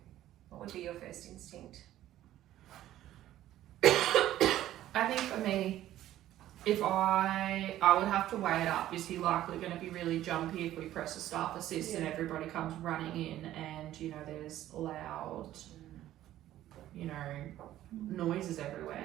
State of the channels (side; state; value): left; quieter; 13.4 dB